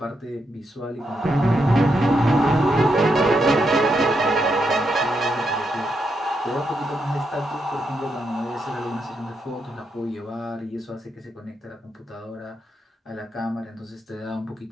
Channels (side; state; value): both; normal; correlation 0.82